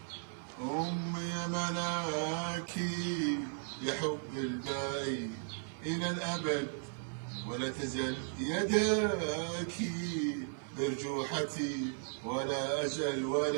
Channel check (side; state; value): left; silent; 54 dB below the other